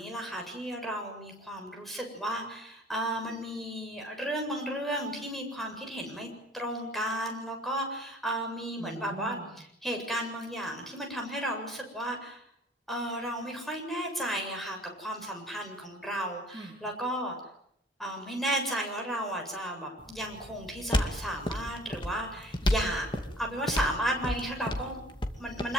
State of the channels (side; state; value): both; normal; correlation 0.51